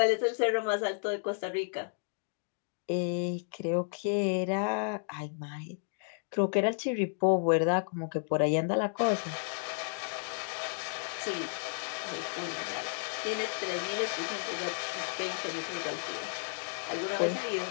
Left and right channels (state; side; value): silent; right; digital silence